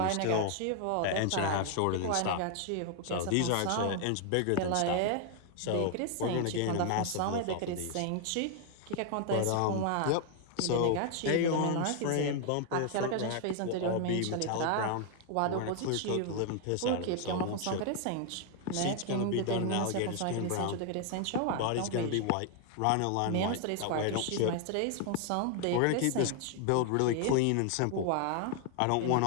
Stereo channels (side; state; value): both; different; correlation 0.00